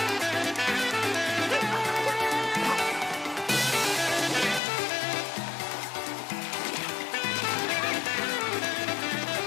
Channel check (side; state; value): right; drops out; at 4.6 s